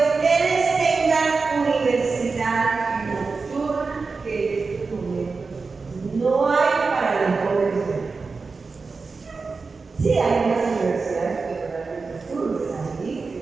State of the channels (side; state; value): left; quieter; 4.4 dB